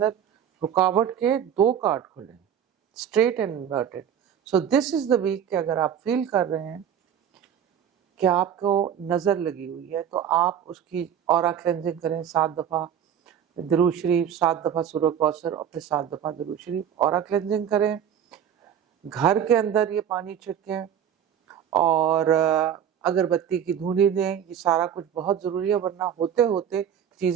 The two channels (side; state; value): left; quieter; 9.1 dB